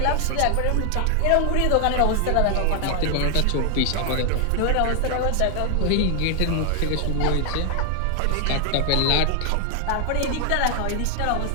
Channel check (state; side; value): different; both; correlation 0.00